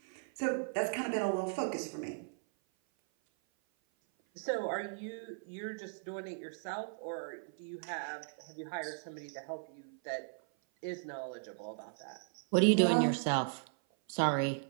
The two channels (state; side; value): silent; left; 53 dB below the other